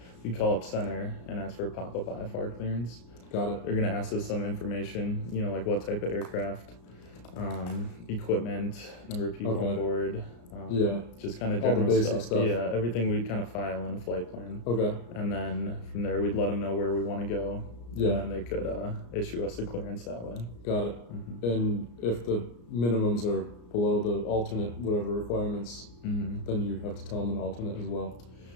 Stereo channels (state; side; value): late; right; 34 ms